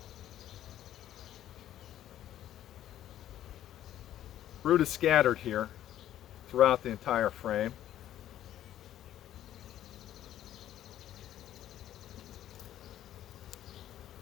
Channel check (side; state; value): right; quieter; 12.1 dB